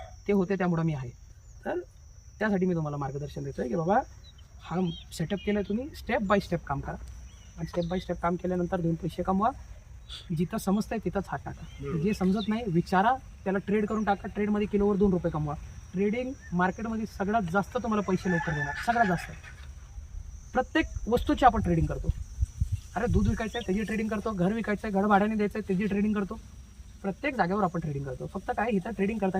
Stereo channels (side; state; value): both; identical; correlation 1.00